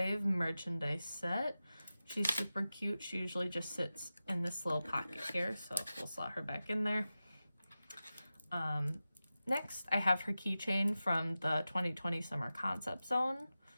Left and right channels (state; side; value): inverted; both; correlation -0.94